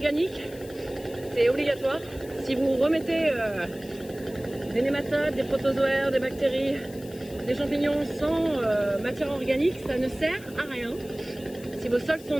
c'est obligatoire. Si vous remettez des nématodes, des protozoaires, des bactéries, des champignons sans matière organique, ça ne sert à rien. Si vos sols sont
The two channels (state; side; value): noise; left; hiss, 20 dB below the sound